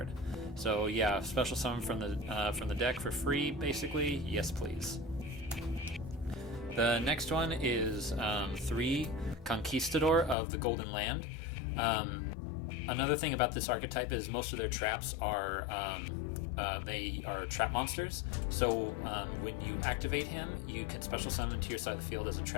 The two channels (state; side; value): drops out; right; at 10.4 s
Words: So yeah, special summon from the deck for free, basically. Yes, please. The next one is 3 Conquistador of the Golden Land. Another thing about this archetype is most of their traps are they are trap monsters. So when you activate him, you can special summon to your side of the field as a